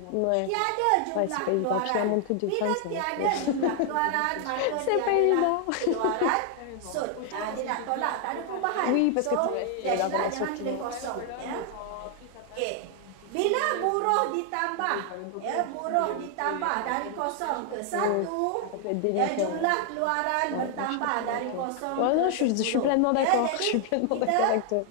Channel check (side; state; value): both; different; correlation 0.00